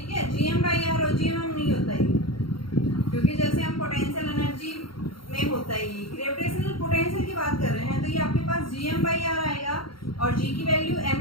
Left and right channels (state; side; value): late; right; 0.73 ms